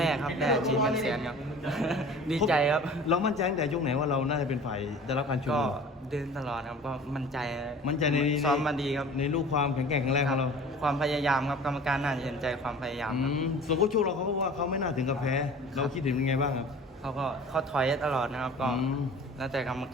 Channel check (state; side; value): normal; both; correlation 0.43